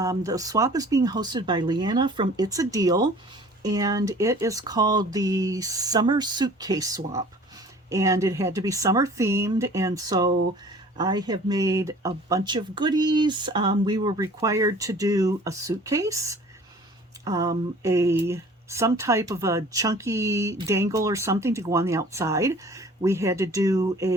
swap is being hosted by Leanna from It's a Deal, and it is called the Summer Suitcase Swap, and it had to be summer themed, and so I have made a bunch of goodies. We were required to do a suitcase, some type of a chunky dangle or something to go on the outside. We had to do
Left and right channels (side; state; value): both; normal; correlation 0.48